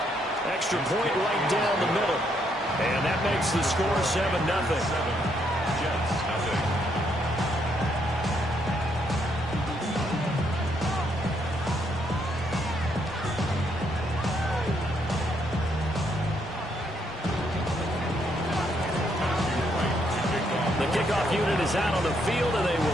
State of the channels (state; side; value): normal; both; correlation 0.74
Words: Extra point right down the middle. And that makes the score 7-0. Jets, nothing. The kickoff unit is out on the field, and they